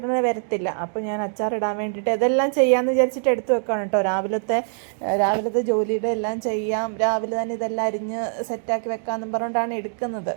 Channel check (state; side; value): silent; left; digital silence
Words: വരത്തില്ല. അപ്പോൾ ഞാൻ അച്ചാറിടാൻ വേണ്ടിയിട്ട് ഇതെല്ലാം ചെയ്യാമെന്ന് വിചാരിച്ചിട്ട് എടുത്തു വെക്കുകയാണ് കേട്ടോ. രാവിലത്തെ ജോലിയുടെ എല്ലാം ചെയ്യാം, രാവിലെ തന്നെ ഇതെല്ലാം അരിഞ്ഞ് സെറ്റാക്കി വെക്കാമെന്നും പറഞ്ഞുകൊണ്ടാണ് എടുക്കുന്നത്.